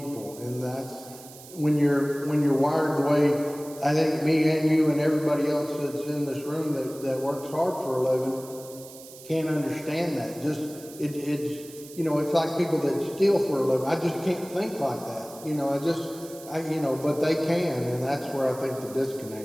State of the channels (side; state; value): right; noise; hiss, 18 dB below the sound